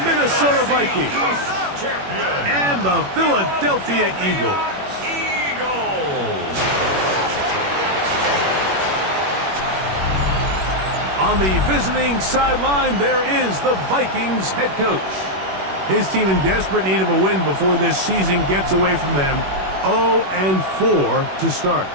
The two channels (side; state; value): left; late; 21 ms